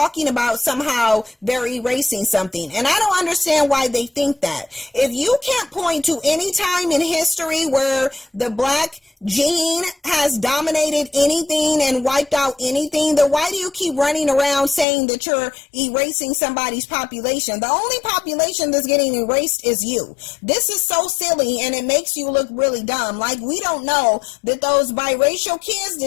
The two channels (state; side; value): drops out; right; at 14.9 s